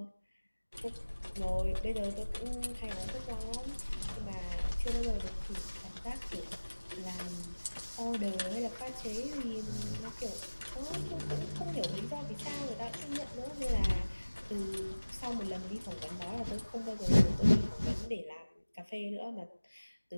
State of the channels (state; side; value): inverted; both; correlation -1.00